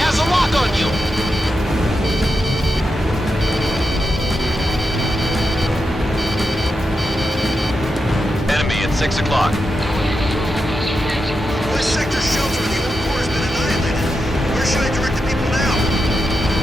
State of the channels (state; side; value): normal; both; correlation 0.87